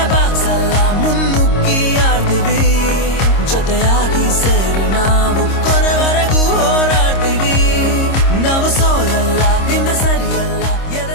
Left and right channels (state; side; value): late; right; 26 ms